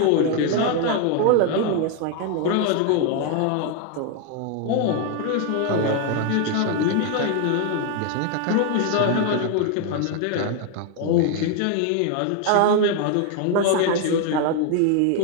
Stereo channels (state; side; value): different; both; correlation 0.01